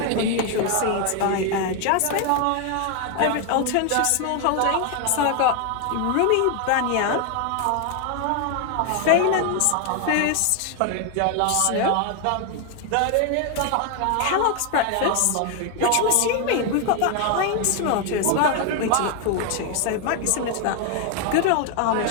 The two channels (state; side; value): different; both; correlation 0.01